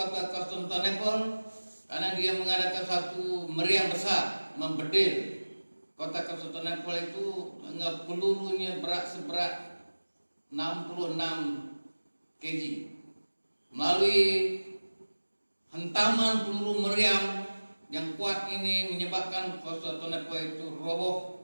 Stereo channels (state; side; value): inverted; both; correlation -1.00